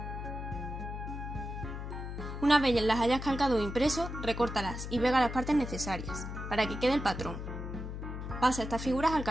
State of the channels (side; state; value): left; noise; hum, 7 dB below the sound